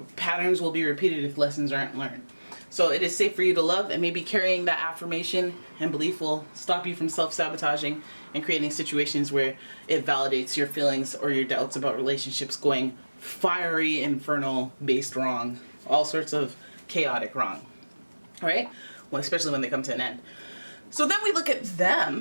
patterns will be repeated if lessons aren't learned. So it is safe for you to love, and maybe carrying that affirmation and belief will stop you from self-sabotaging and creating situations where it validates your feelings or your doubts about relationships going fiery, infernal, based wrong, all sorts of chaotic wrong. All right? Well, especially when they come to an end. So then we look at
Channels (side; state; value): both; inverted; correlation -1.00